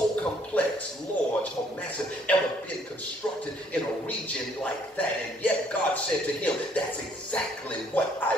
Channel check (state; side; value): normal; both; correlation 0.64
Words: complex, large, or massive ever been constructed in a region like that. And yet God said to him, that's exactly what I